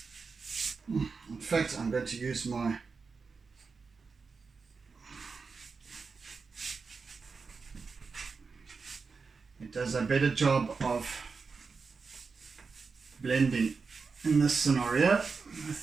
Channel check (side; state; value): left; quieter; 4.8 dB